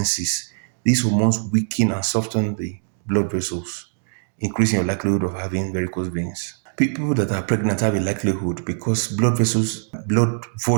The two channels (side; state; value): left; silent; digital silence